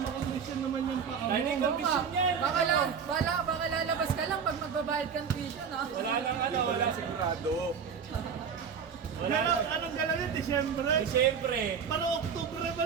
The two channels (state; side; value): quieter; left; 6.6 dB